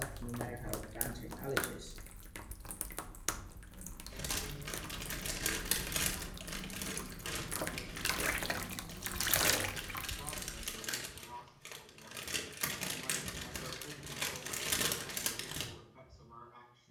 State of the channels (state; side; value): identical; both; correlation 1.00